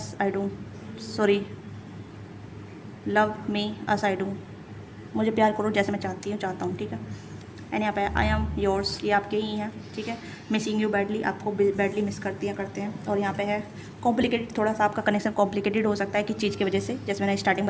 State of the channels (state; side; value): identical; both; correlation 1.00